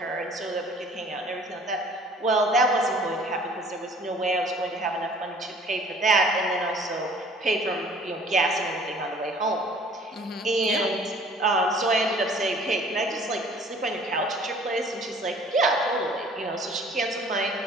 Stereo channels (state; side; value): normal; both; correlation 0.52